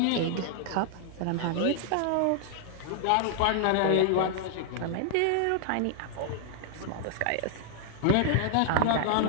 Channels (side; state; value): both; different; correlation -0.01